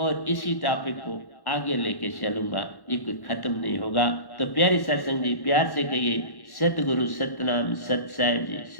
और इसी टॉपिक को आगे लेके चलूंगा, ये कोई खत्म नहीं होगा। तो प्यारी सत्संग जी, प्यार से कहिए सतगुरु सतनाम सत साहिब जी,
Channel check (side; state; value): right; late; 1.1 ms